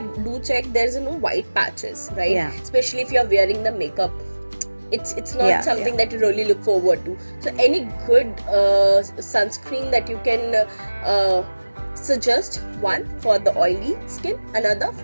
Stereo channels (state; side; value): inverted; both; correlation -1.00